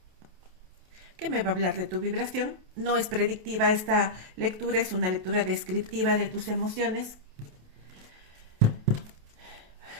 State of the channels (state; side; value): late; left; 28 ms